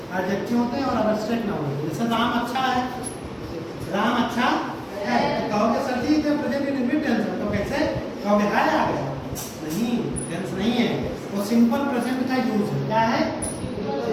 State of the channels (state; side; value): identical; both; correlation 1.00